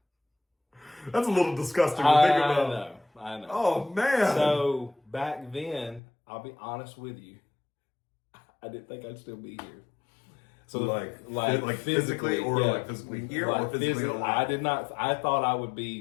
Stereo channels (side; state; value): right; drops out; at 6.0 s